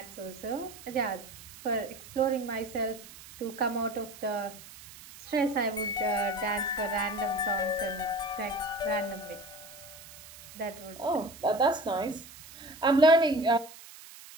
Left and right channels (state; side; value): noise; right; hiss, 17 dB below the sound